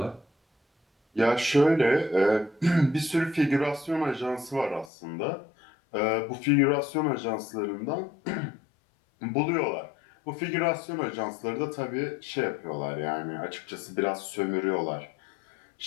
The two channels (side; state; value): right; drops out; at 4.9 s